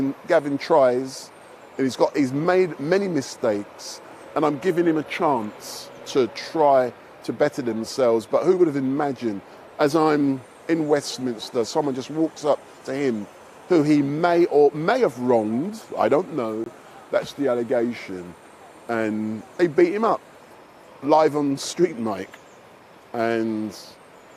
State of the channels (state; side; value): identical; both; correlation 1.00